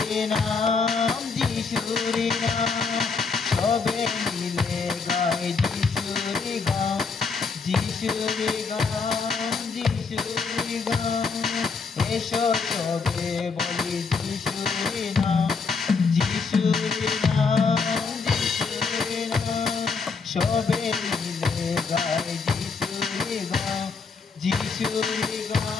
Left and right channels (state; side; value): quieter; right; 4.9 dB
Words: নাম, যিশুরি নাম। সবে মিলে গায় যিশুরি গান, যিশুরি গান, যিশুরি গান। এসো সবে বলি যিশুরি নাম, যিশুরি নাম, যিশুরি নাম। সবে মিলে গায় যিশুরি গান, যিশুরি